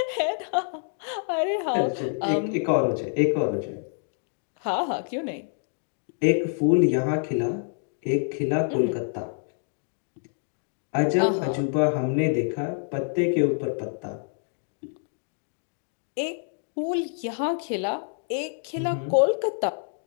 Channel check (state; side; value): silent; right; digital silence